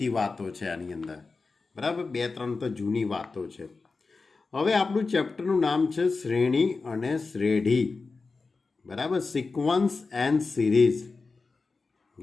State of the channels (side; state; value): right; quieter; 4.1 dB